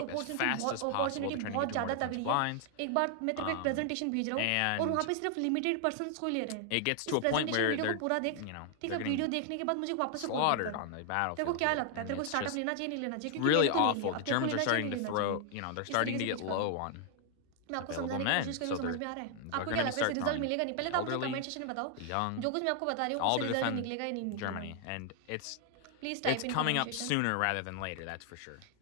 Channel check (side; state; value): both; different; correlation 0.00